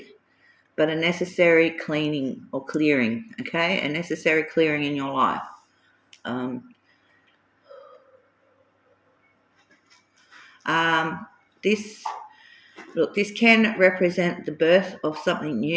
but a necessary cleaning or clearing, okay? A necessary clearing in your life. This can represent the birth of something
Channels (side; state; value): both; identical; correlation 1.00